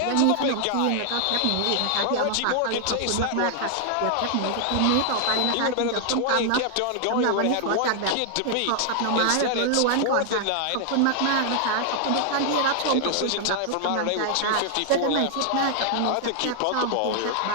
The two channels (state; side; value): different; both; correlation 0.00